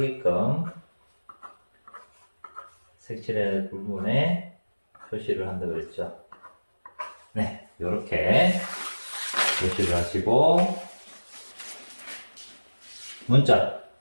색칠의 부분에 표시를 한다 그랬죠. 네, 이렇게 표시를 하시고 문자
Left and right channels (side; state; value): both; inverted; correlation -1.00